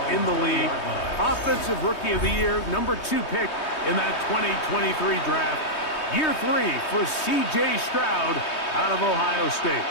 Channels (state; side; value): late; right; 3.2 ms